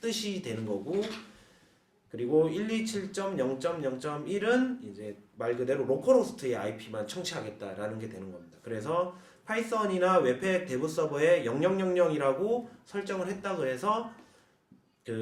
뜻이 되는 거고, 그리고 127.0.0.1은 이제 말 그대로 로컬 호스트의 IP만 청취하겠다라는 게 되는 겁니다. 그래서 파이썬이나 웹팩 대부 서버에 0000이라고 설정을 했다고 해서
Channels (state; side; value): identical; both; correlation 1.00